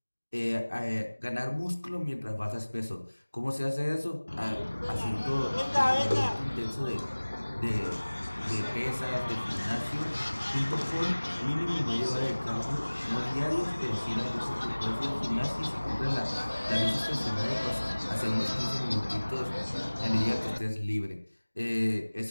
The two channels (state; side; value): inverted; both; correlation -1.00